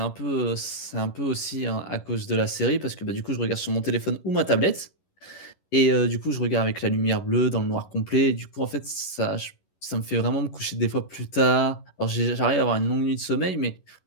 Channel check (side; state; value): right; late; 11 ms